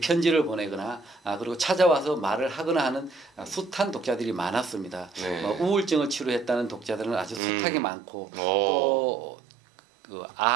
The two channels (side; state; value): left; drops out; at 7.4 s